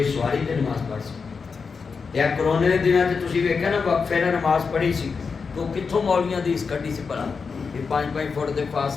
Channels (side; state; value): right; quieter; 5.2 dB